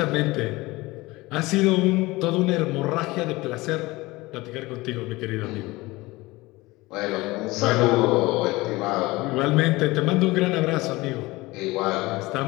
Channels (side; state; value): right; quieter; 21.0 dB